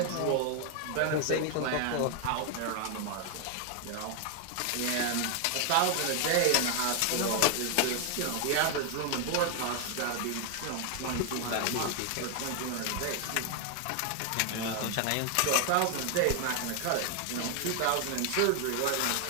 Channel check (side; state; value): both; different; correlation 0.00